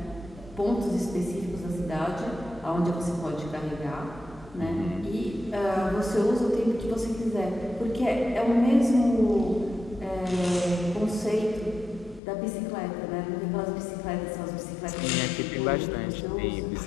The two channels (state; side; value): drops out; right; at 12.2 s